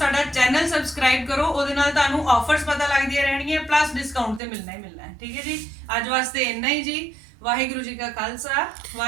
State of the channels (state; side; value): drops out; left; at 4.4 s